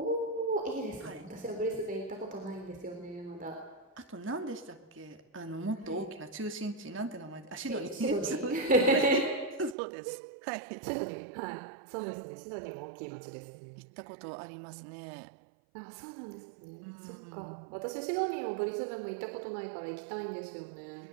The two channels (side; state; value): left; drops out; at 9.8 s